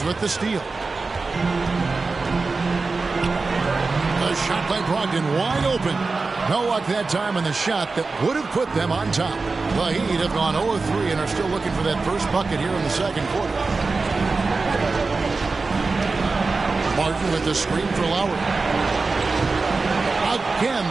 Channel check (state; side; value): quieter; left; 4.0 dB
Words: with the steal. The shot by Brogdon wide open. No luck that time on the shot that would have put them on top. The Heat have gone 0-3 and are still looking for that first bucket here in the second quarter. Martin with the screen for Lowry. Again,